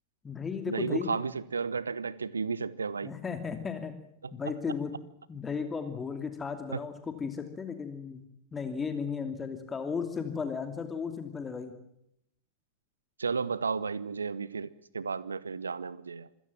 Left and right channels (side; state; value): both; normal; correlation -0.11